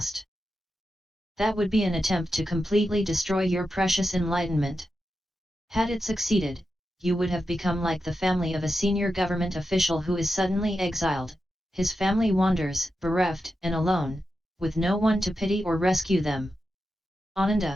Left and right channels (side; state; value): both; normal; correlation 0.89